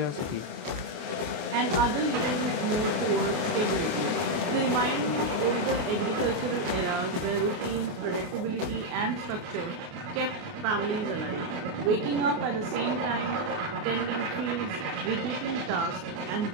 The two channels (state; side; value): late; left; 28 ms